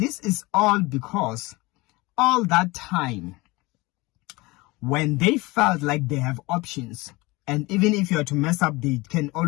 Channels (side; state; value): right; quieter; 22.7 dB